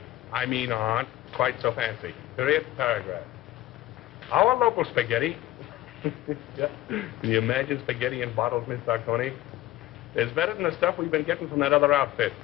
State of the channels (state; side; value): quieter; right; 15.7 dB